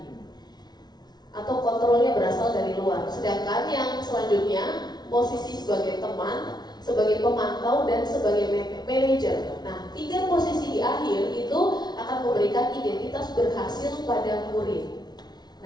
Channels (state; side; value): late; right; 0.19 ms